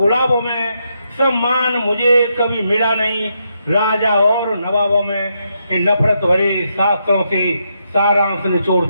में, सम्मान मुझे कभी मिला नहीं राजा और नवाबों में। इन नफरत भरे शास्त्रों से सारांश निचोड़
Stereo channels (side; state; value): both; inverted; correlation -0.80